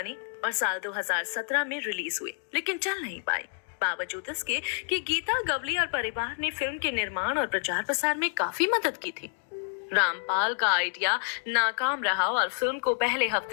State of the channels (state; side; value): silent; right; digital silence